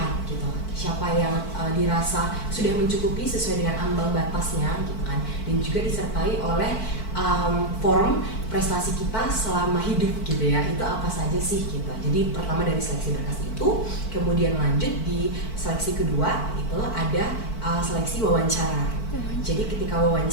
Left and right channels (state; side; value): late; right; 4.5 ms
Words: gitu siapa yang dirasa sudah mencukupi sesuai dengan ambang batasnya gitu kan, dan juga disertai oleh form prestasi kita selama hidup gitu ya, itu apa saja sih gitu. Jadi pertama dari seleksi berkas itu, kemudian lanjut di seleksi kedua itu ada seleksi wawancara. Jadi ketika